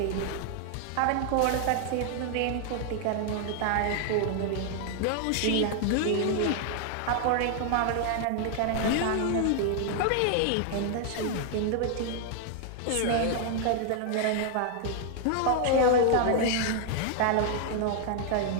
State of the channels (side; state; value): both; different; correlation 0.00